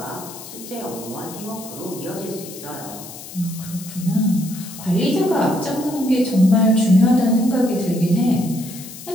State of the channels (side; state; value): left; noise; hiss, 14 dB below the sound